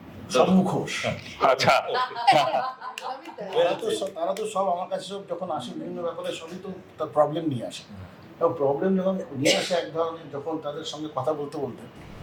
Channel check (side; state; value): both; identical; correlation 1.00